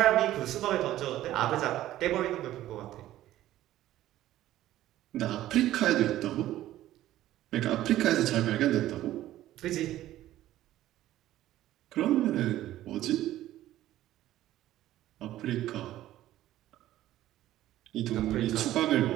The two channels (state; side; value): quieter; left; 14.1 dB